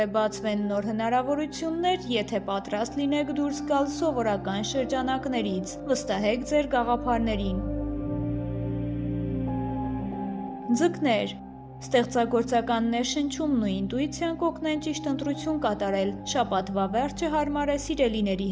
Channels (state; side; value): identical; both; correlation 1.00